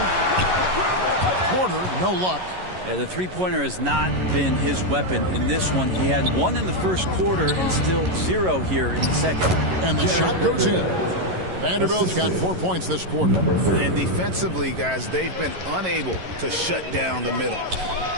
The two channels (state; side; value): late; left; 11 ms